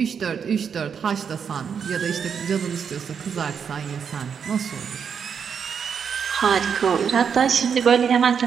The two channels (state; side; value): quieter; left; 7.0 dB